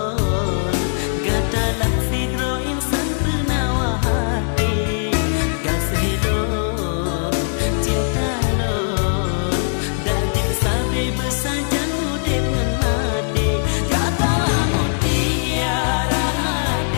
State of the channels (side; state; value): right; silent; digital silence